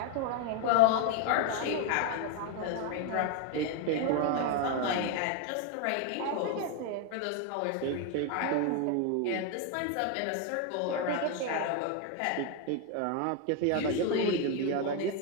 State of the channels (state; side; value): different; both; correlation 0.01